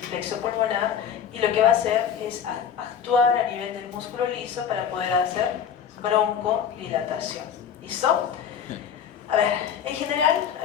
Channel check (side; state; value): right; quieter; 8.1 dB